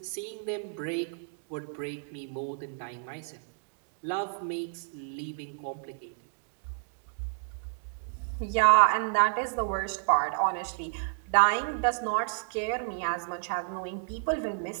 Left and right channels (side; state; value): left; silent; digital silence